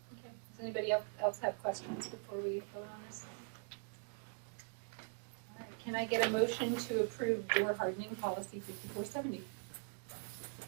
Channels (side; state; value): left; silent; 50 dB below the other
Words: Okay, does anybody else have questions before we vote on this? All right, can I get a motion to approve door hardening policy 5470?